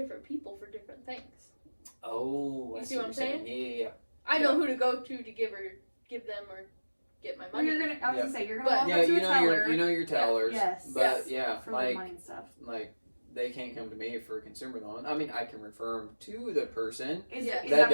people for different things. Oh, You I see what I'm you're saying? saying? Yeah. I know who to go to give them or get my Well, money. I was gonna say you're gonna But- walk Yeah, up to you a know teller your tellers. Yes. But Yes. yeah, for the like money and stuff. they can't come to me for a consumer loan. I mean, I can refer them to the person. Is, Yeah. is That that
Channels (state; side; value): inverted; both; correlation -1.00